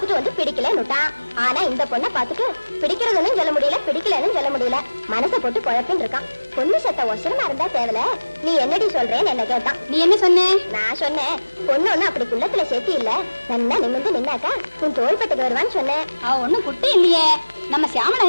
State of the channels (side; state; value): both; inverted; correlation -1.00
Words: வந்து பிடிக்கலன்னுட்டான். ஆனா இந்த பொண்ணை பாத்துட்டு பிடிக்கிறதுன்னு சொல்ல முடியல, பிடிக்கலன்னு சொல்ல முடியல. மனசை போட்டு குழப்பின்னு இருக்கான். பொண்ணு சத்த ஒசரமா இருந்தா தேவல. நீ என்னடி சொல்றேன்னு என்ன கேட்டான். நீ என்ன சொன்ன? நான் சொன்னேன், பொண்ணு ஒண்ணு அப்படி குள்ளத்துல சேர்த்தி இல்ல, நல்லா நிமிந்து நின்னாக்கா உன் தோள்பட்டுக்கு வருவான்னு சொன்னேன். அவ ஒண்ணும் குட்டி இல்லையே. நம்ம சியாமலா